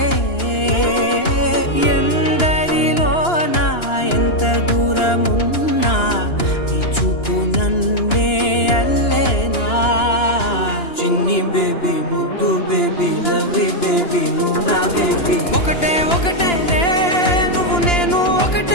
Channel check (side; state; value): right; late; 2.9 ms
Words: ఎందరిలోనా ఎంత దూరమున్నా నీ చూపు నన్నే అల్లేనా చిన్ని బేబీ ముద్దు బేబీ లవ్లీ బేబీ నువ్వు నా బేబీ ఒకటే ఒకటేలే నువ్వు నేను